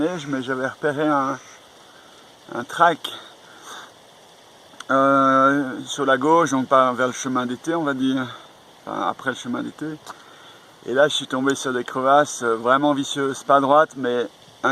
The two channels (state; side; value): identical; both; correlation 1.00